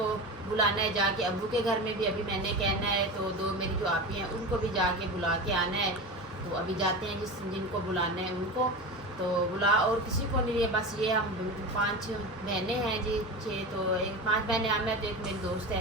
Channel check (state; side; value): normal; both; correlation 0.26